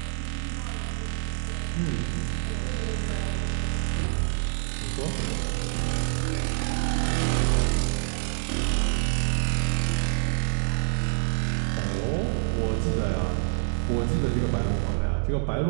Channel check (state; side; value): silent; left; digital silence